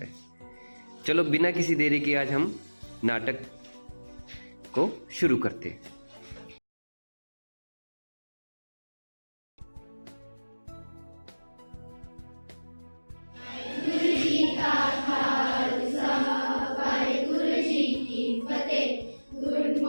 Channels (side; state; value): both; inverted; correlation -1.00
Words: हैं। चलो बिना किसी देरी के आज हम नाटक को शुरू करते हैं। Good